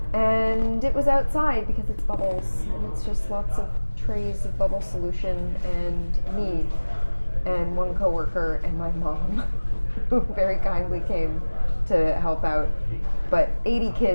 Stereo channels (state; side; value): inverted; both; correlation -1.00